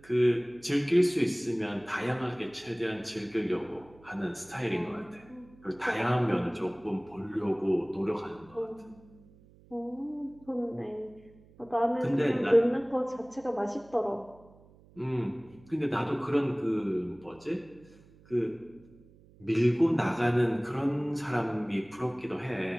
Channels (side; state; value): right; noise; hum, 26 dB below the sound